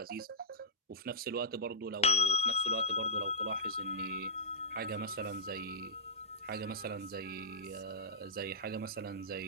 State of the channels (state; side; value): normal; both; correlation -0.11